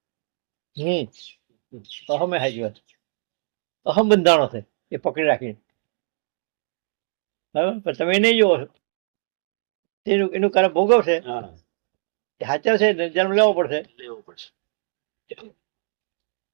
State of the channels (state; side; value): silent; left; digital silence